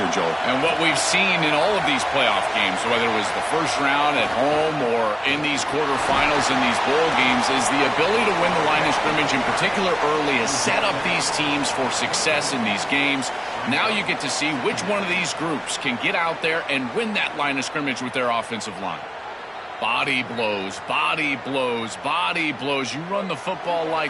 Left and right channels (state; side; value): identical; both; correlation 1.00